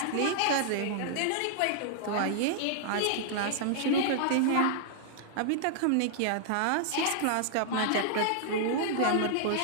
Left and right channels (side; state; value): both; different; correlation -0.01